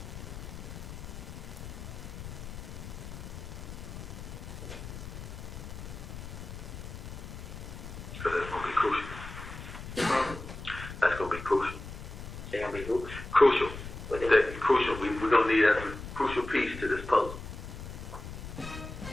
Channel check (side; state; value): left; noise; rumble, 10 dB below the sound